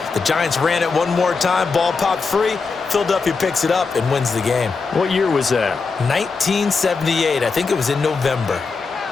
The Giants ran it one more time. Ball popped free. Philadelphia picks it up and wins the game. What year was that? 1978. I think it was in November.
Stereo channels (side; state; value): right; quieter; 4.6 dB